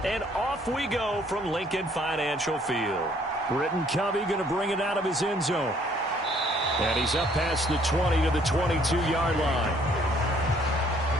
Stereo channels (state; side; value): normal; both; correlation 0.62